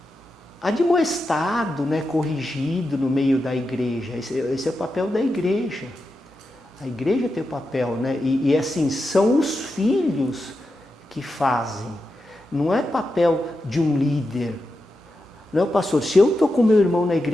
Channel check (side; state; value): both; normal; correlation 0.89